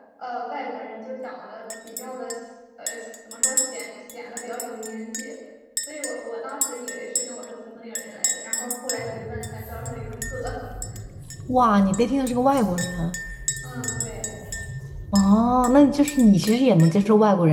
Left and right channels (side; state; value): both; identical; correlation 1.00